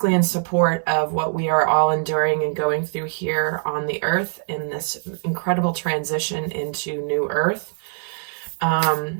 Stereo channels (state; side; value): silent; left; digital silence